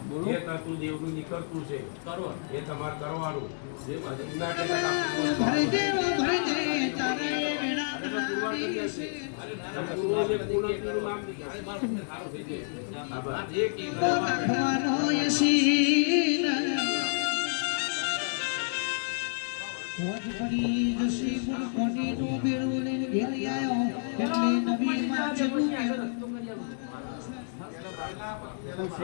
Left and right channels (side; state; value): right; silent; digital silence